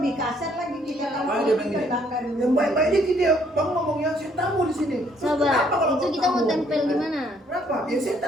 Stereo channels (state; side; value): normal; both; correlation 0.66